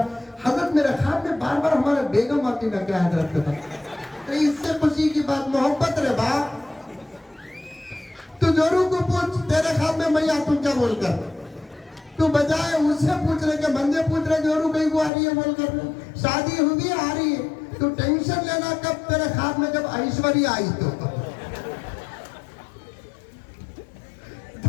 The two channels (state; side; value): drops out; right; at 15.1 s